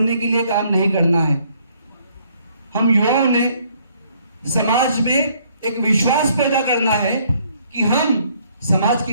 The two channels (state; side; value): inverted; both; correlation -0.65